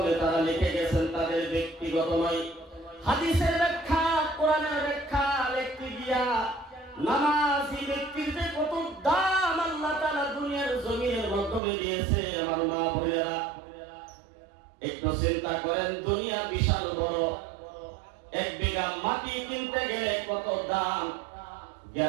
তারা লিখে গেছেন তাদের ব্যক্তিগত নয়, হাদিসের ব্যাখ্যা, কোরআনের ব্যাখ্যা লিখতে গিয়া নামাজি ব্যক্তির যে কত দাম আল্লাহ তাআলা দুনিয়ার জমিনের মাধ্যমে দিয়েছে। আমার মা বোনেরা একটু চিন্তা করেন, দুনিয়া বিশাল বড়। এক বিঘা মাটি কিনতে গেলে কত দাম।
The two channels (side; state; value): left; drops out; at 11.6 s